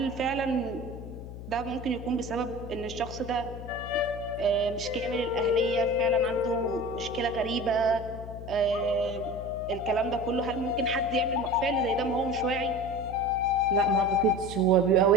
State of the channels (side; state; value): left; noise; hum, 11 dB below the sound